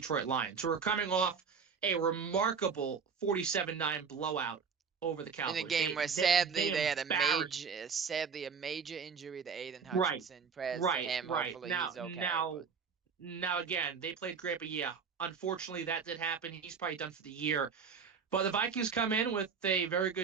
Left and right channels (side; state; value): left; quieter; 5.9 dB